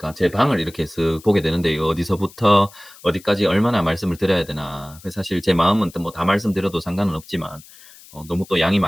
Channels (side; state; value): left; noise; hiss, 22 dB below the sound